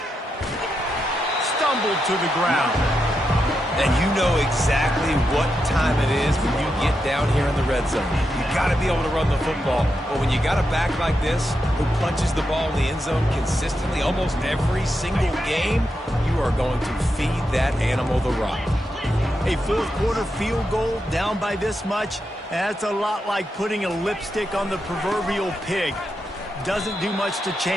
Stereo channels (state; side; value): normal; both; correlation 0.85